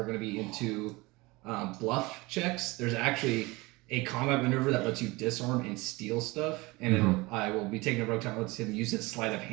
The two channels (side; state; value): left; quieter; 22.9 dB